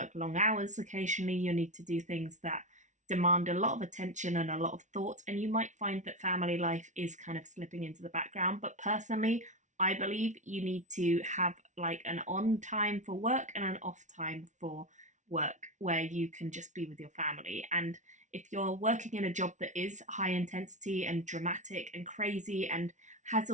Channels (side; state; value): left; late; 0.36 ms